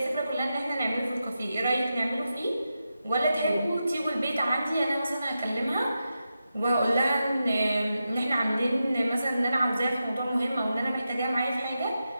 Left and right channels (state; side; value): inverted; both; correlation -0.89